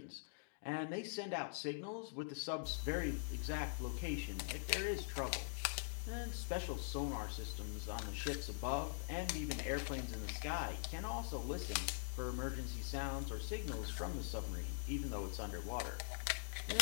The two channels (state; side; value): silent; right; digital silence